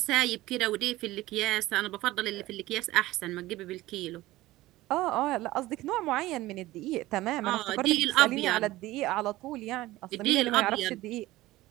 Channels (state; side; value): quieter; left; 17.5 dB